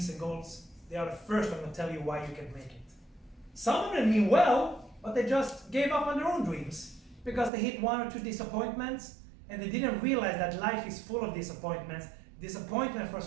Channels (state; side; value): drops out; left; at 7.5 s